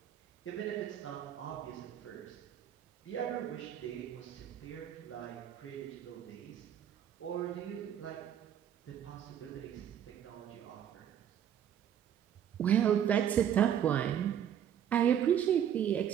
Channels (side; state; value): left; quieter; 9.6 dB